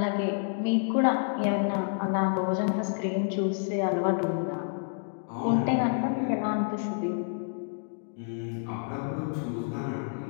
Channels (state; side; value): silent; right; digital silence